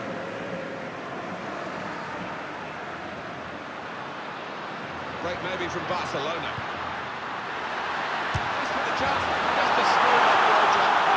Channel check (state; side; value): identical; both; correlation 1.00